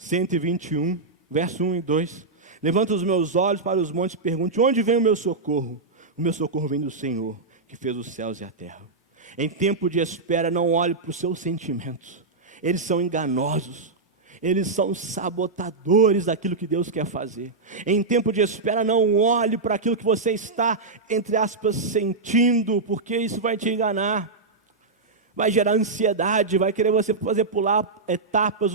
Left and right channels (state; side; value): quieter; left; 3.8 dB